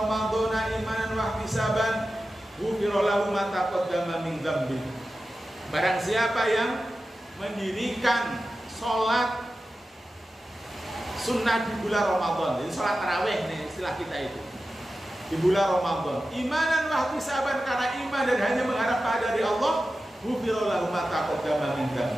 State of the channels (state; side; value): normal; both; correlation 0.93